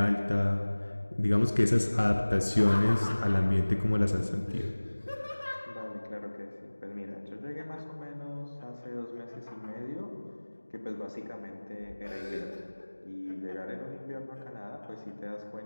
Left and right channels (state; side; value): inverted; both; correlation -1.00